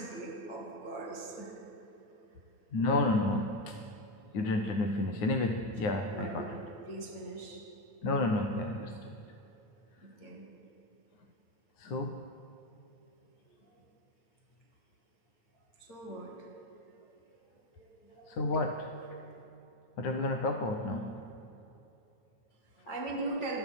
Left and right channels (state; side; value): late; right; 8.8 ms